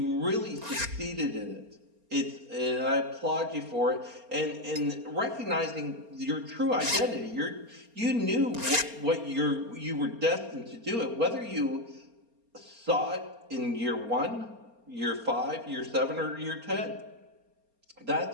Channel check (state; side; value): late; left; 4.3 ms